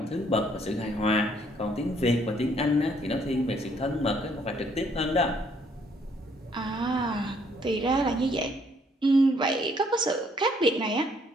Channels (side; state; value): both; normal; correlation 0.66